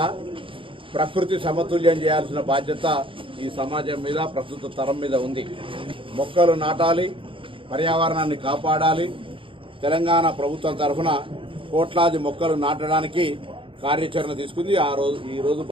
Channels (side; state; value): left; late; 0.25 ms